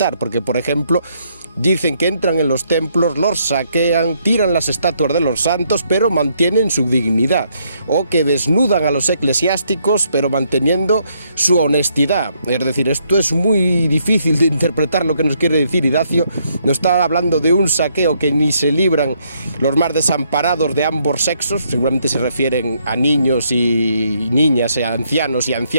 porque por ejemplo dicen que entran en los templos, los saquean, tiran las estatuas de los santos, pero mantienen su dignidad, o que desnudan a los eclesiásticos, pero manteniendo su honestidad. Es decir, esto es muy difícil de interpretar lo que nos quiere decir Idacio. Nos está hablando de un saqueo que ni se libran los más desamparados de ambos sexos, seguramente se refieren a niños y niñas, a ancianos y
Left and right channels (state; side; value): inverted; both; correlation -0.72